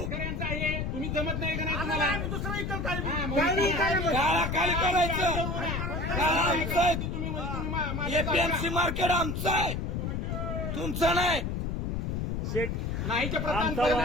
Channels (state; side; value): noise; left; rumble, 2 dB below the sound